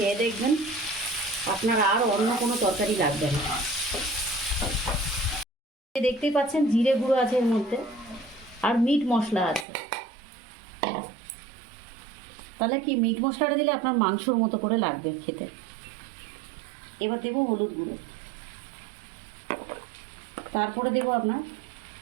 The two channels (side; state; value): left; drops out; at 9.7 s